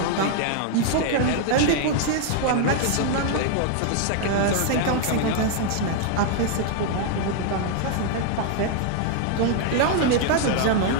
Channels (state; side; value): different; both; correlation 0.00